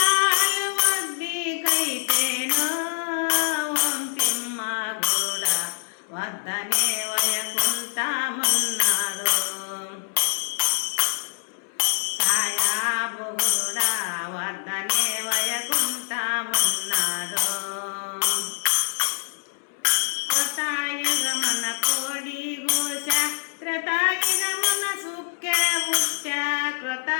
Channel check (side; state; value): right; silent; 62 dB below the other